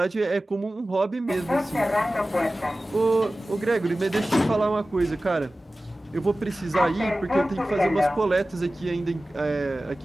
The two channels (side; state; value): both; normal; correlation 0.96